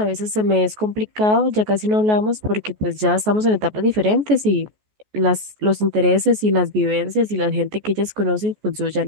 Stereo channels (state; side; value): late; left; 14 ms